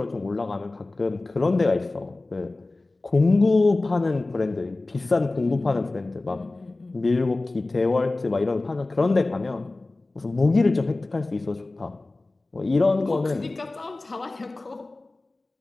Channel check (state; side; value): quieter; right; 3.1 dB